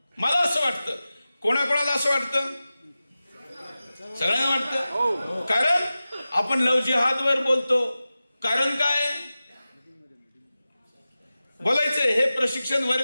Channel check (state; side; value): inverted; both; correlation -0.95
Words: मला असं वाटतं, कोणाकोणाला असं वाटतं? सगळ्यांना वाटतं. कारण आपण लव जिहादवर बोलतो. कारण काय? बोलायचंय, हे प्रशिक्षण